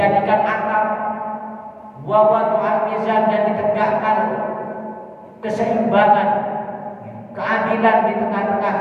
atap, wawadhu al-mizan dan ditegakkan keseimbangan, keadilan di tengah-tengah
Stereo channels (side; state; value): both; identical; correlation 1.00